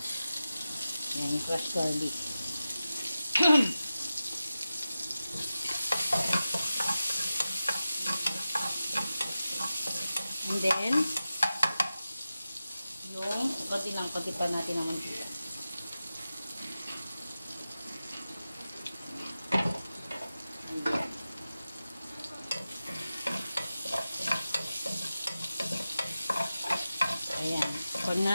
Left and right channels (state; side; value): inverted; both; correlation -0.94